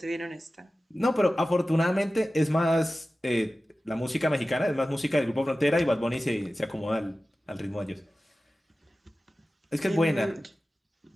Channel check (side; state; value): both; normal; correlation 0.95